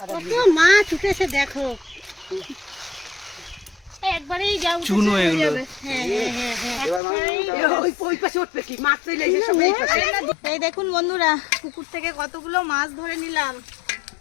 মাছ উঠেছে দেখো। একবারেই যাও চুনো এগুলো। হ্যাঁ হ্যাঁ হ্যাঁ, ওই পাশে উঠবে কি মাছ চলে এসে সব এই পাশে। এই দেখুন বন্ধুরা, পুকুর থেকে কতগুলো মাছ ধরে নিলাম।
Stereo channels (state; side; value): drops out; right; at 7.0 s